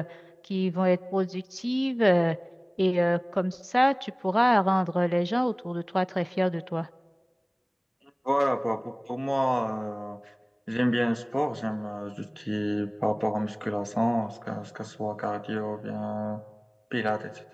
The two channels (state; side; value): identical; both; correlation 1.00